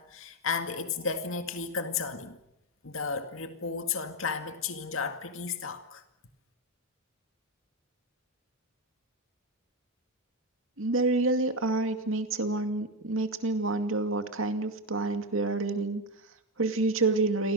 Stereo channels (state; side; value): normal; both; correlation 0.11